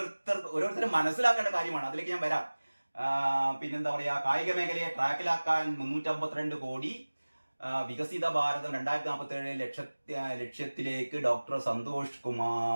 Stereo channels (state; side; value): inverted; both; correlation -1.00